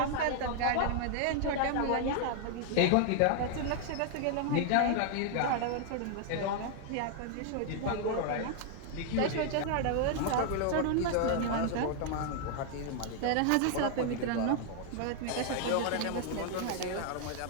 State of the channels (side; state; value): both; different; correlation 0.00